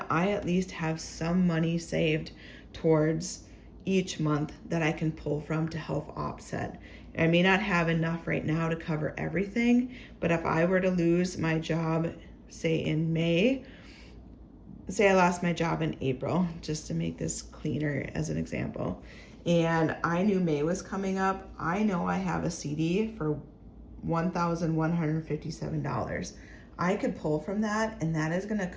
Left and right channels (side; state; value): both; identical; correlation 1.00